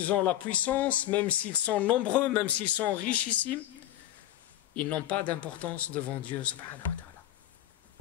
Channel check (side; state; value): right; quieter; 12.9 dB